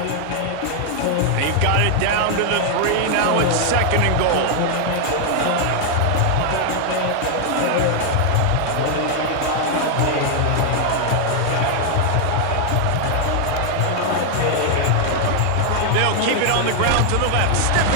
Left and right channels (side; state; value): both; different; correlation 0.00